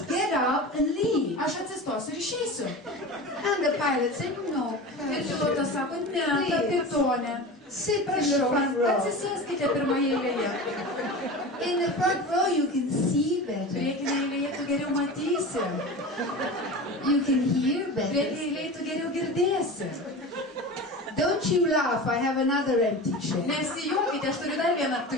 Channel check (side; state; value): both; normal; correlation 0.31